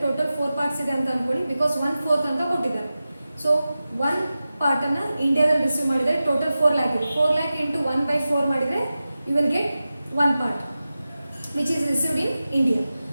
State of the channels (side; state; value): both; inverted; correlation -0.94